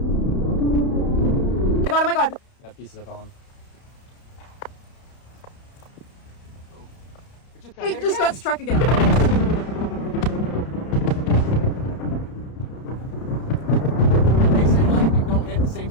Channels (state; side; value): late; right; 31 ms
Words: Oh my god. That piece of on. It just got struck again. Makes it like they don't hit the same